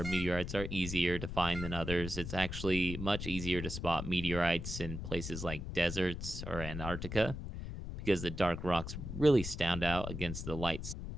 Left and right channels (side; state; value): left; noise; rumble, 6 dB below the sound